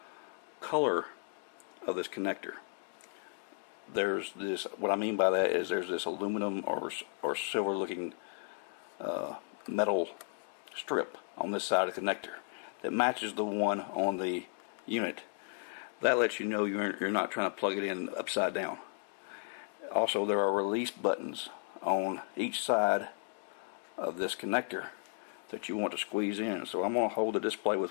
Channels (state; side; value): silent; right; 55 dB below the other